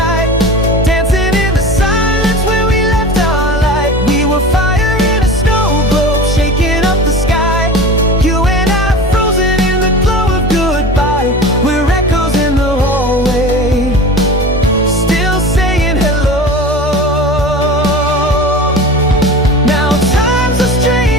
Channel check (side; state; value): both; normal; correlation 0.34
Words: dancing in the silence where we left our light. We were fire in a snow globe, shaking up the sky. You and I frozen in the glow of goodbye. We're echoes in the